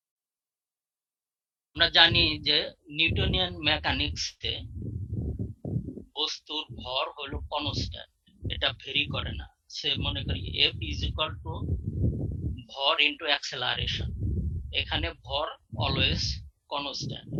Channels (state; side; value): identical; both; correlation 1.00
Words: আমরা জানি যে নিউটনিয়ান মেকানিক্সে বস্তুর ভর হলো কনস্ট্যান্ট, এটা ভেরি করে না। সে মনে করি F is equal to ভর ইন্টু অ্যাক্সেলারেশন, এখানে ভর অলওয়েজ কনস্ট্যান্ট।